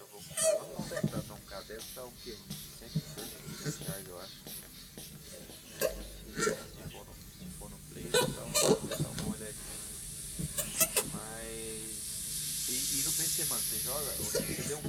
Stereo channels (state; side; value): identical; both; correlation 1.00